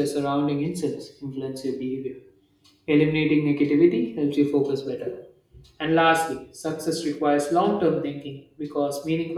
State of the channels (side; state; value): both; identical; correlation 1.00